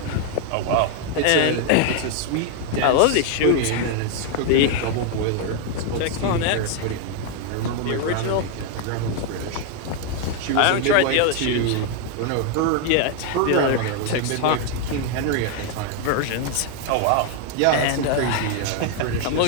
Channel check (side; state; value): both; different; correlation 0.00